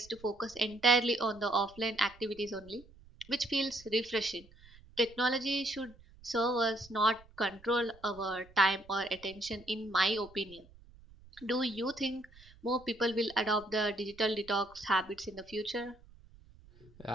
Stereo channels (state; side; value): noise; right; rumble, 24 dB below the sound